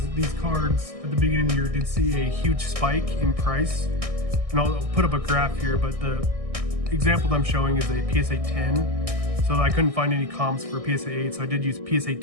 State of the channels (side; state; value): left; late; 1.6 ms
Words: these cards at the beginning of the year did see a huge spike in price. And I'll put up a graph here, but the example that I'm showing is a PSA 10. So I couldn't find any comps for PSA 8, so I did use PSA